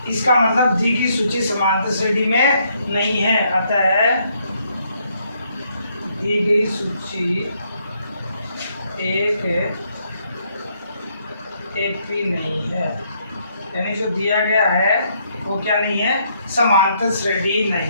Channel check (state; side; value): inverted; both; correlation -0.72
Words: इसका मतलब दी की सूची समांतर श्रेणी में नहीं है। अतः दी गई सूची एक एपी नहीं है, यानी जो दिया गया है वो क्या नहीं है, समांतर श्रेणी